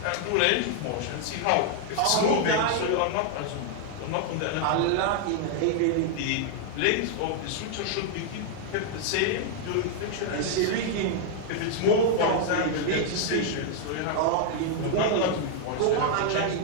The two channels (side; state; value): both; different; correlation 0.00